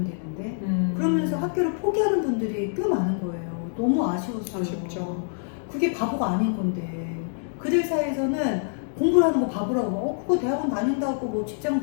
되는데. 그러면서 학교를 포기하는 분들이 꽤 많은 거예요. 너무 아쉬웠어요. 아쉽죠. 그게 바보가 아닌 건데. 그들 사이에서는 공부를 하는 거 바보라고. 그거 대학원 다닌다고 뭐 직장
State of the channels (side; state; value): right; silent; digital silence